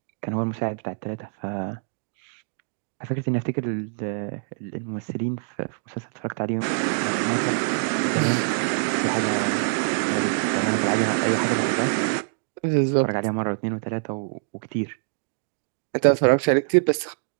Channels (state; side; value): silent; left; digital silence